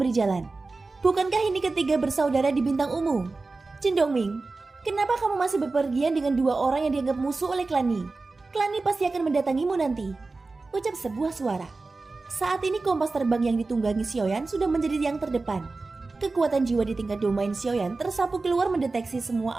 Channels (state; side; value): quieter; left; 3.7 dB